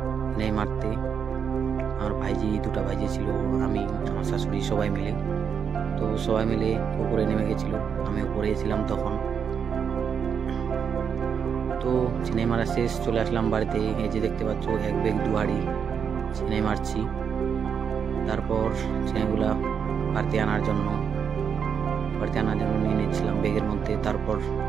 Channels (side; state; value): left; quieter; 7.0 dB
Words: নেই মারতে। আমার দুটা ভাইজি ছিল, আমি আমার শাশুড়ি সবাই মিলে। তো সবাই মিলে পুকুরে নেমে গেছিল, আমি উপরে ছিলাম তখন। তো চিনাই মারা শেষ, চলে আসলাম বাড়িতে। এই যে দেখতে পাচ্ছ এক ব্যাগ দুহাড়ি চিনাই মারছি। তারপর চিনাইগুলা বাড়িতে আনার জন্য নিয়ে নিচ্ছিলাম ব্যাগের মধ্যে। তারপর